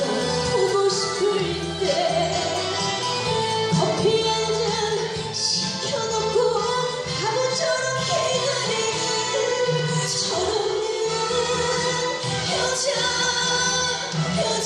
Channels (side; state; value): both; identical; correlation 1.00